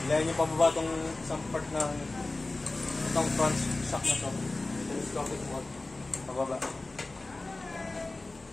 ilayan nyo pababa itong isang part ng itong front shock na ito. Telescopic mode. Pababa.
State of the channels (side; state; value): right; quieter; 3.1 dB